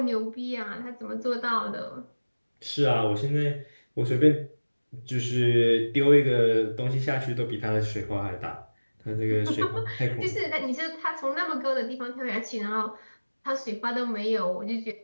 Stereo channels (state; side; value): inverted; both; correlation -1.00